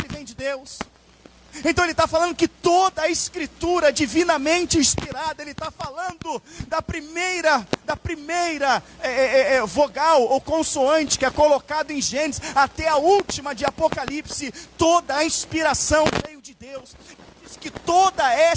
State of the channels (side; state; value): both; identical; correlation 1.00